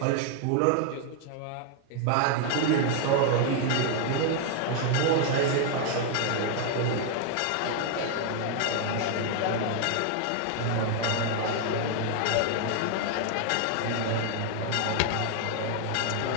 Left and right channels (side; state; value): both; different; correlation 0.00